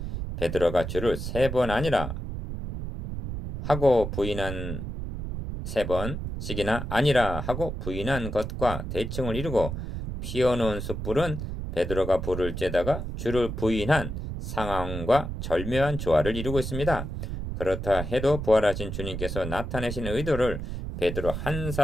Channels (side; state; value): right; noise; rumble, 5 dB below the sound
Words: 베드로가 주를 3번 아니라 하고 부인한 3번씩이나 아니라 하고 부인한 것과 대칭을 이루고 피어놓은 숯불은 베드로가 불을 쬐다가 주를 부인한 상황과 절묘한 조화를 이루고 있습니다. 그렇다 해도 부활하신 주님께서 나타내신 의도를 베드로 한